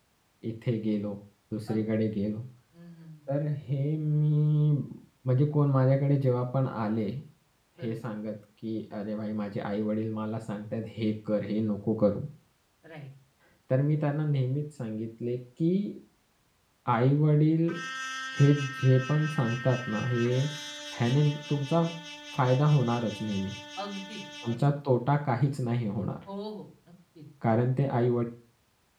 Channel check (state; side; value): identical; both; correlation 1.00